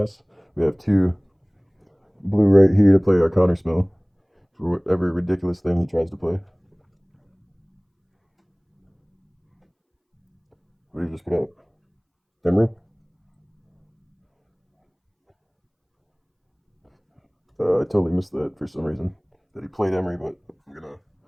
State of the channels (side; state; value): both; identical; correlation 1.00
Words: We have 2 blue right here to play our counterspell for whatever ridiculous thing he tries to play. What did you just put up? Emry? I totally missed that for some reason. That he played Emry, but I'm going to